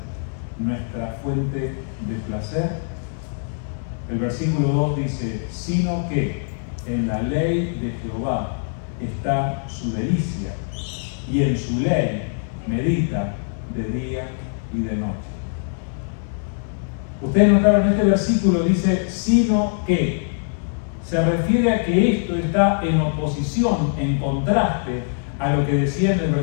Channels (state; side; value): silent; right; 64 dB below the other